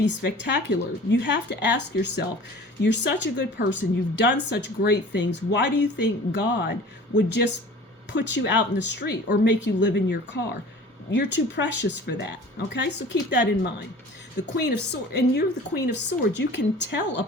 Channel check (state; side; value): normal; both; correlation 0.44